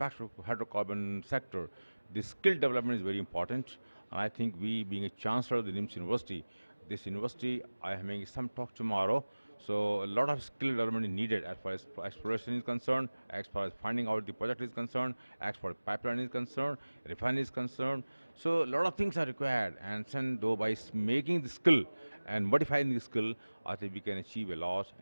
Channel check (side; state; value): both; inverted; correlation -1.00